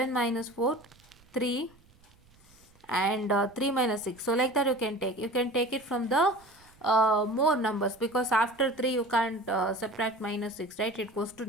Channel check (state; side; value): noise; right; rumble, 29 dB below the sound